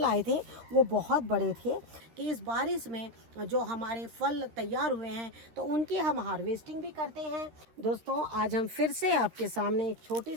आए थे वो बहुत बड़े थे कि इस बारिश में जो हमारे फल तैयार हुए हैं तो उनकी हम हार्वेस्टिंग भी करते हैं। दोस्तों, आज हम फिर से आपके सामने एक छोटी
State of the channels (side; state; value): left; late; 13 ms